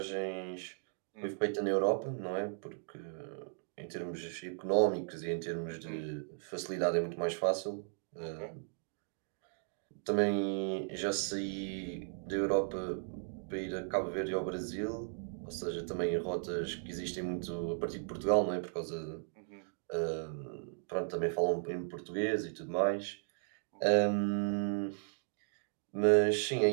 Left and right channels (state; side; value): silent; left; digital silence